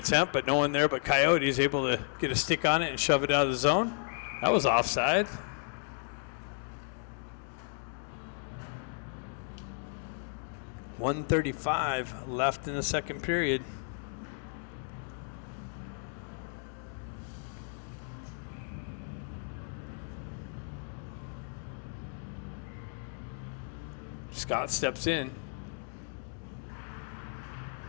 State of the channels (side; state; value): right; silent; 55 dB below the other